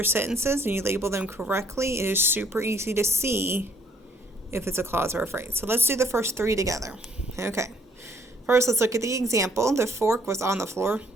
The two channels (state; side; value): normal; both; correlation 0.64